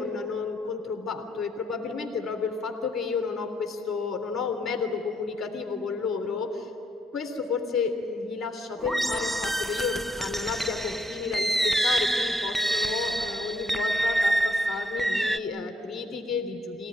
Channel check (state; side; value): normal; both; correlation 0.72